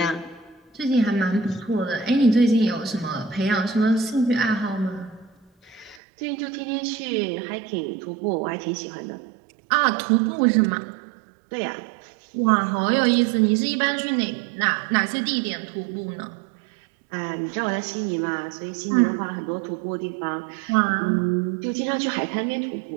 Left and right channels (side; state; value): left; drops out; at 6.0 s